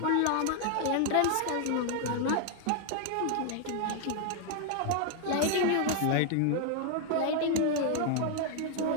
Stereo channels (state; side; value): different; both; correlation 0.00